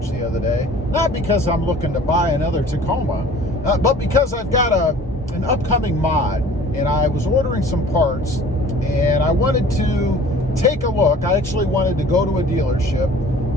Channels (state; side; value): normal; both; correlation 0.47